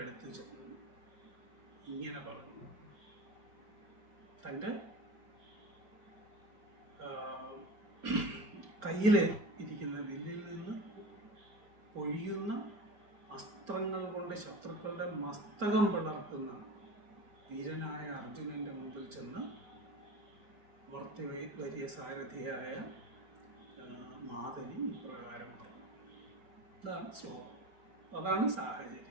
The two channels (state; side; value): late; left; 4.3 ms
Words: അടുത്ത് ചെന്നു ഇങ്ങനെ പറഞ്ഞു. തൻ്റെ കയ്യിൽ ഇരിക്കുന്ന വില്ലിൽ നിന്ന് പൊഴിയുന്ന അസ്ത്രങ്ങൾ കൊണ്ട് ശത്രുക്കളുടെ മസ്തകം പിളർക്കുന്ന വീരനായ അർജുനൻ്റെ മുമ്പിൽ ചെന്ന് വലിയ സാരഥിയായ മാതലി ഇപ്രകാരം പറഞ്ഞു. ഇതാണ് ശ്ലോകം. അതാണ്